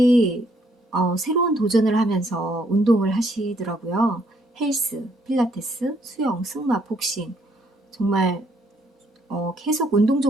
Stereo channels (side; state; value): both; normal; correlation 0.69